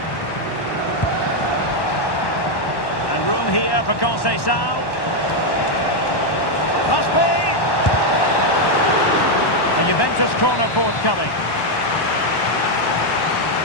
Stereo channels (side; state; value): right; late; 1.1 ms